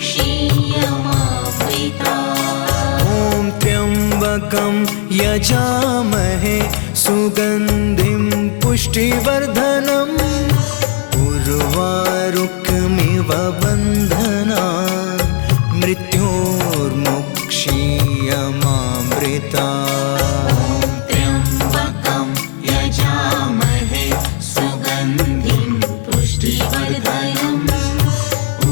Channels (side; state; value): right; silent; digital silence